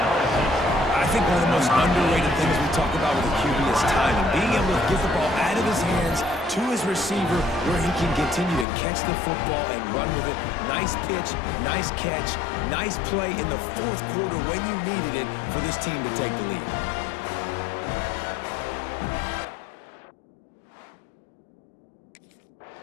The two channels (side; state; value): right; drops out; at 8.7 s